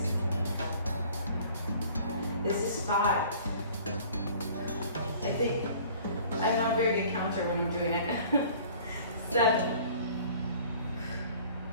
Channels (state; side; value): inverted; both; correlation -0.50